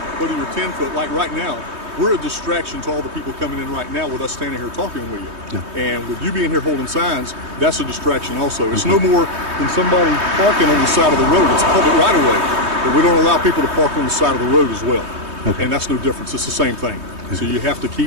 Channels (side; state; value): left; late; 3.2 ms